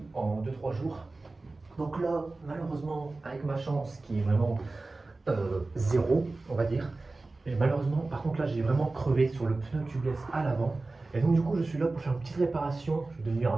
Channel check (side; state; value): left; quieter; 3.3 dB